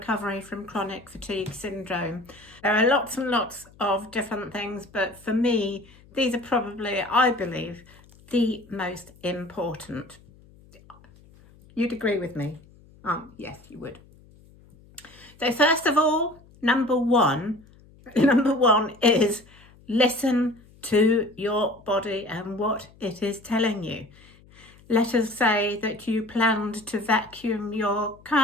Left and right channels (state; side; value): noise; left; hum, 26 dB below the sound